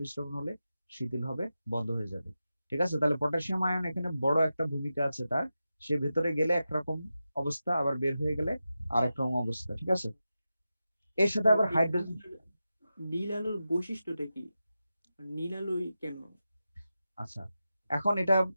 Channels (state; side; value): inverted; both; correlation -0.91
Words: হলে শিথিল হবে, বন্ধ হয়ে যাবে। ঠিক আছে? তাহলে পটাশিয়াম আয়ন এখানে বড় একটা ভূমিকা আছে তার। সে ভেতরে গেলে একরকম অবস্থা, আবার বের হয়ে গেলে আরেক রকম অবস্থা। ঠিক আছে? এর সাথে আবার হাইড্রোজেন। নীল আলোর বৈশিষ্ট্যটা কি? নীল আলোই কেন? আচ্ছা, এখন এটা